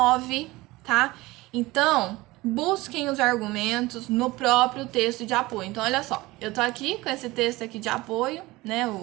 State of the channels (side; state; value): left; quieter; 20.3 dB